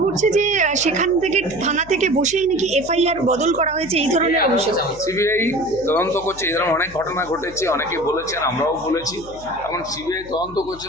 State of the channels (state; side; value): noise; left; hum, 19 dB below the sound